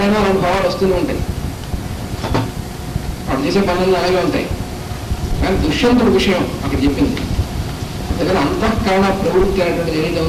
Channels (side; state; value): both; identical; correlation 1.00